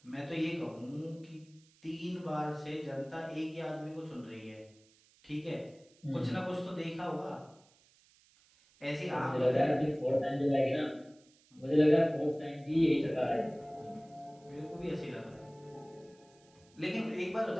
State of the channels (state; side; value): noise; right; hiss, 30 dB below the sound